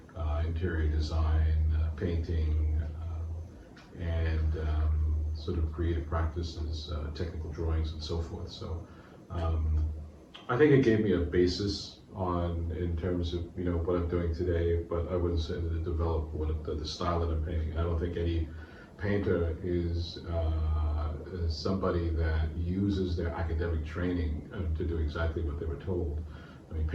interior design, painting, and sort of creative practices, technical drawings, and so forth. So I think it gave me a basis in terms of what I'm doing today, but I wouldn't say that it developed the style that I'm painting. I don't think any painter is somebody that uses their academic training to do exactly what they were told. I mean,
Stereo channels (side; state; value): both; identical; correlation 1.00